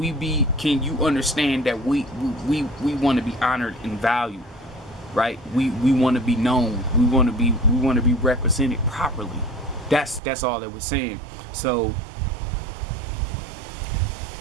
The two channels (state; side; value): drops out; left; at 10.2 s